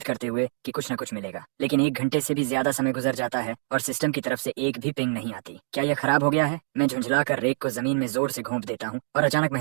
करते हुए कि कुछ न कुछ मिलेगा। लेकिन 1 घंटे से भी ज्यादा समय गुजर जाता है और सिस्टम की तरफ से एक भी पिंग नहीं आती। क्या यह खराब हो गया है? मैं झुंझलाकर रेक को जमीन में जोर से घोंप देता हूँ और अचानक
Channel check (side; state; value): left; silent; digital silence